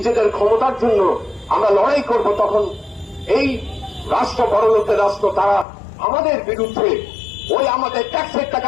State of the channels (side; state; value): right; drops out; at 5.7 s